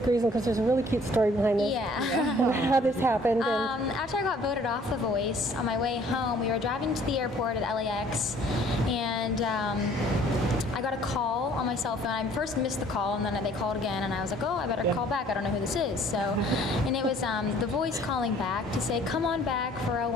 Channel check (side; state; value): both; normal; correlation 0.56